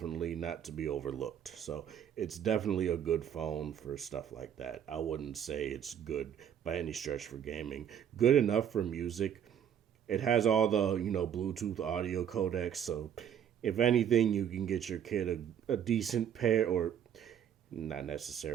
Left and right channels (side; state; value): left; quieter; 9.0 dB